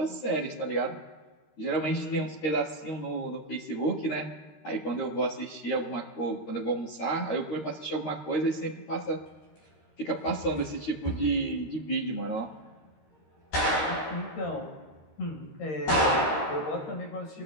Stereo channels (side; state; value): right; late; 13 ms